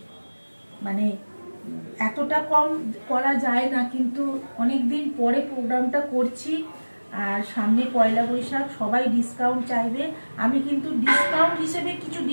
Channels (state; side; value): inverted; both; correlation -1.00